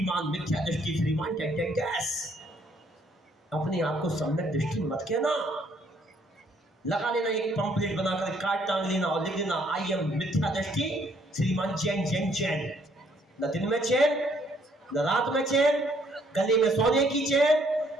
मिथ्या दृष्टि श्रीमान गैस। अपने आप को सम्यक दृष्टि मत कहना, लगा लेना एक पंपलेट बनाकर कार्ड टांग लेना और लिख देना आई एम मिथ्या दृष्टि श्रीमान चैन चैन चैन। न दिन में चैन न रात में चैन, गले में सोने की चैन,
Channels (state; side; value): normal; both; correlation 0.66